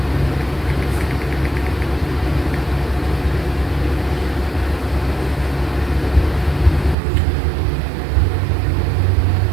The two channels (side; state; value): left; drops out; at 7.0 s